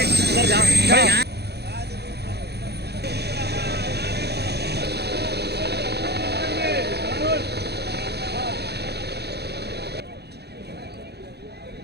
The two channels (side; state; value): left; late; 0.48 ms